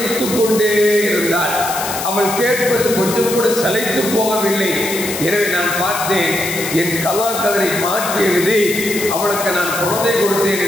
கொண்டே இருந்தாள். அவள் கேட்பது கொஞ்சம் கூட சளைத்து போகவில்லை. எனவே நான் பார்த்தேன், என் கலாக்கதரை மாற்றி எழுதி அவளுக்கு நான் குழந்தை கொடுத்தேன்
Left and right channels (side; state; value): left; noise; hiss, 6 dB below the sound